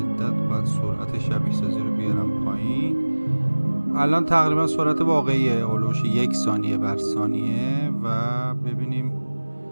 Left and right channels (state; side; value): inverted; both; correlation -1.00